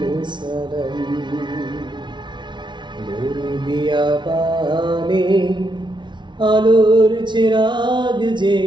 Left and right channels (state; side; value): late; left; 0.23 ms